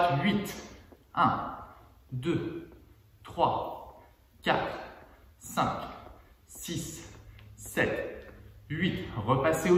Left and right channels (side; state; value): both; identical; correlation 1.00